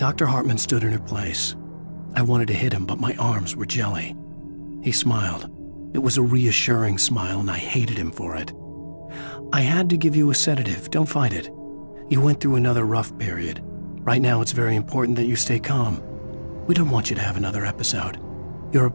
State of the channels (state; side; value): inverted; both; correlation -1.00